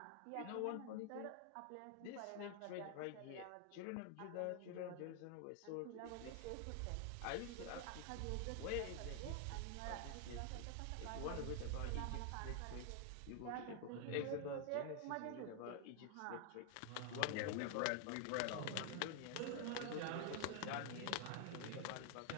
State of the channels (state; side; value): different; both; correlation 0.00